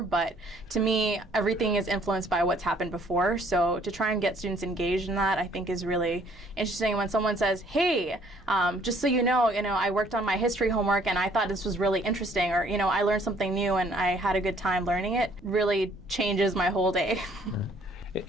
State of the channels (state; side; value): noise; right; rumble, 26 dB below the sound